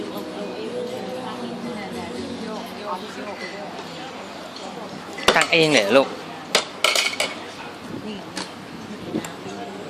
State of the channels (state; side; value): identical; both; correlation 1.00